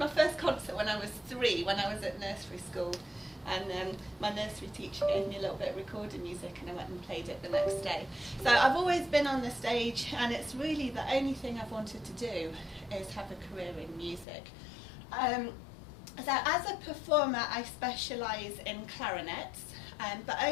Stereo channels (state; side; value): drops out; right; at 14.2 s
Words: first concert when I was 3, when I was at nursery school. And my nursery teacher gave me a little bit of recorded music, and I went and played it the next day. So I've always been on the stage, and it's really the only thing I've wanted to do is have a career in music. So as a performer, I specialise in clarinets, but